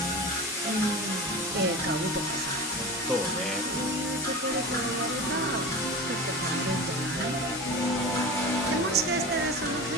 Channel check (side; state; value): both; normal; correlation 0.31